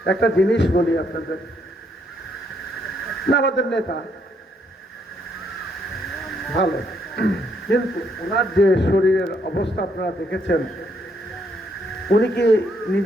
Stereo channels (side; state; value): both; normal; correlation 0.73